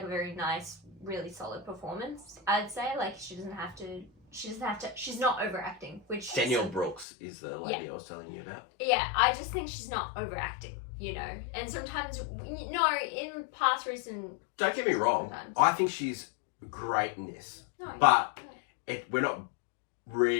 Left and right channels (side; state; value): right; drops out; at 7.1 s